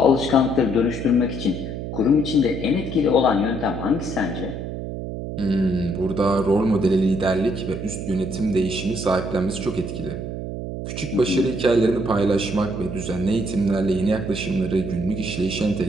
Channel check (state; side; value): noise; right; hum, 6 dB below the sound